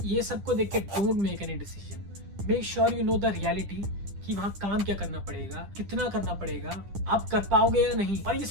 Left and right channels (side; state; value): left; late; 10 ms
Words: ये सबको देख के don't make any decision. Make sure you know the reality कि वहाँ काम क्या करना पड़ेगा, कितना करना पड़ेगा, आप कर पाओगे या नहीं. और ये